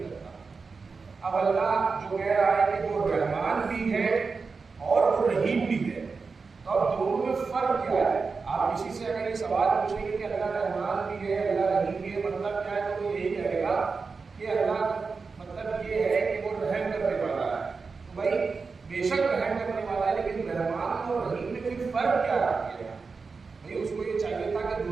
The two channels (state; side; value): quieter; left; 4.7 dB